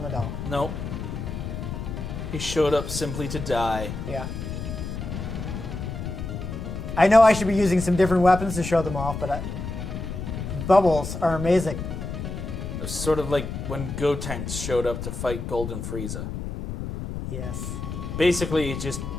at all. Nope. He showed up simply to die. Yeah. I know I should be using some different weapons to show them off, but bubbles are amazing. It's sort of like when Gotenks showed up to fight Golden Frieza. Yes. Basically, he just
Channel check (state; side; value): noise; left; rumble, 6 dB below the sound